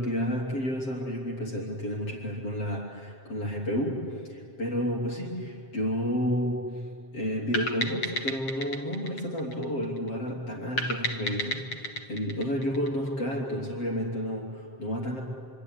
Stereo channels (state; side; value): late; right; 7.6 ms